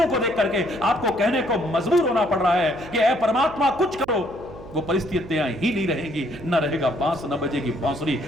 को देख करके आपको कहने को मजबूर होना पड़ रहा है कि ऐ परमात्मा कुछ करो, वो परिस्थितियां ही नहीं रहेंगी। न रहेगा बांस, न बजेगी बांसुरी।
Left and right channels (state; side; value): noise; right; hum, 17 dB below the sound